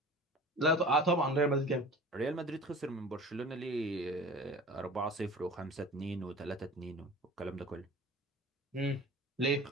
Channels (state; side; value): normal; both; correlation 0.40